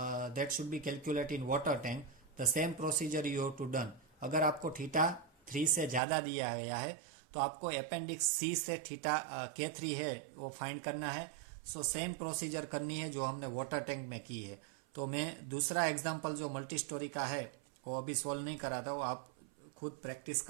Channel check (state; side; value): drops out; left; at 6.0 s